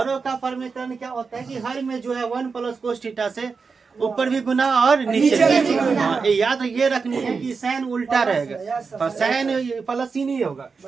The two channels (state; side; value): quieter; left; 5.0 dB